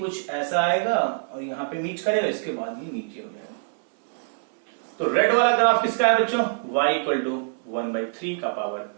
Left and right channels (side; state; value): left; silent; 62 dB below the other